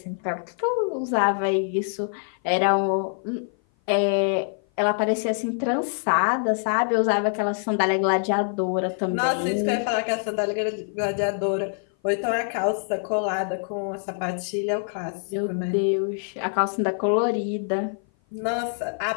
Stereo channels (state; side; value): silent; right; 56 dB below the other